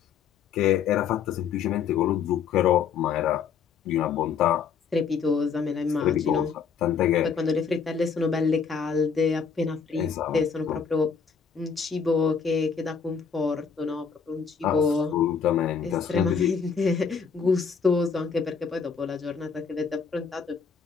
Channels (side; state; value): right; quieter; 6.3 dB